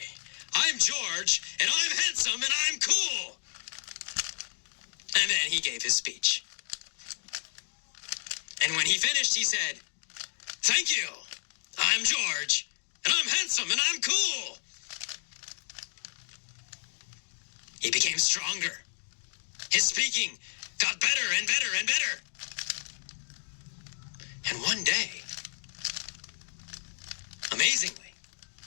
I'm George, and I'm handsome, and I'm cool. And then he gave his speech. And when he finished, he said, thank you, I'm George, and I'm handsome, and I'm cool. He became stronger. His speaking got better and better and better. And one day, amazingly,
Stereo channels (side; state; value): right; silent; 57 dB below the other